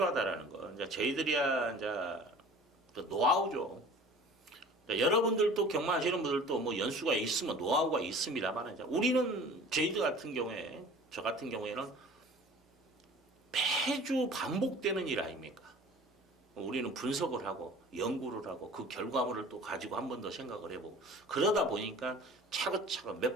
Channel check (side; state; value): both; normal; correlation 0.44